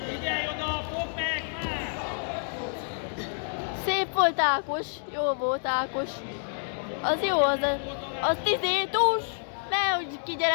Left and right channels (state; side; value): silent; right; digital silence